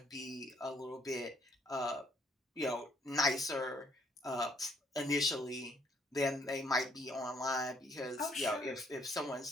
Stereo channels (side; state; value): both; normal; correlation 0.67